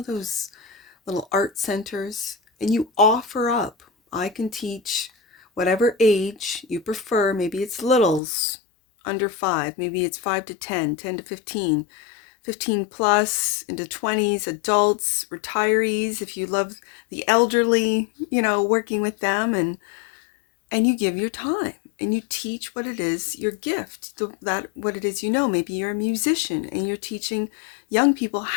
those little art centers, and you offer up, I can teach whatever age you prefer. Maybe it's littles, under 5, maybe it's 5 to 10, 10 to 15, 15 plus, into 20s, adults, retirees, if you love the elderly, you know, working with them, and you give your time and you teach what it is, your gift, that what it is, you know. Maybe you're a musician and you're teaching young people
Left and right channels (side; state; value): right; drops out; at 8.2 s